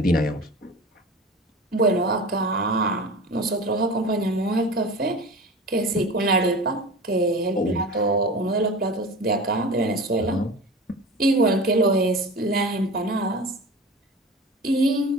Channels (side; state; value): both; normal; correlation 0.35